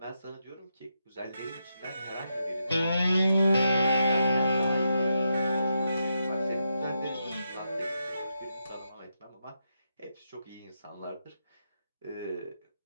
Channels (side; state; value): both; inverted; correlation -0.84